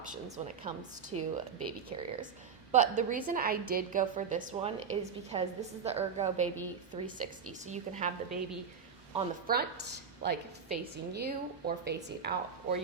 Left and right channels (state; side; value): quieter; left; 6.4 dB